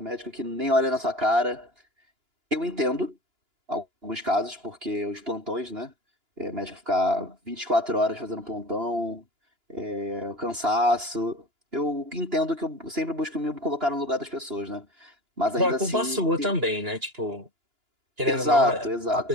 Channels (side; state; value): left; late; 2.9 ms